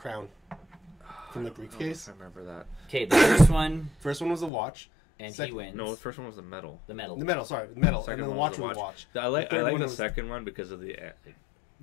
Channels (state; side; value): drops out; right; at 4.5 s